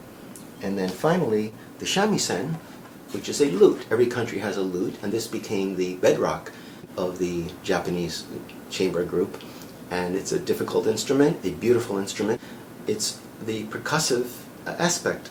And then finally, the shamisen, which is a lute. Every country has a lute, and this became the bedrock of the Japanese chamber group. And it's a difficult instrument, a beautiful instrument. It's the percussive aspect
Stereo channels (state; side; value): identical; both; correlation 1.00